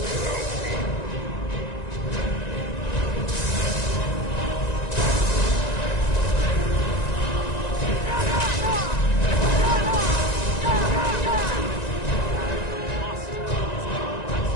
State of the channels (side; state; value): right; late; 1.9 ms